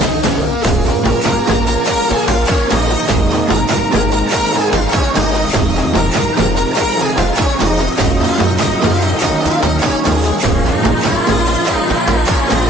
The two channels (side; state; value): both; normal; correlation 0.64